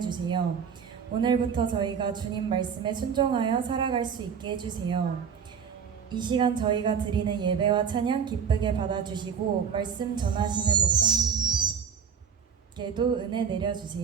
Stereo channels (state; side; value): quieter; left; 7.0 dB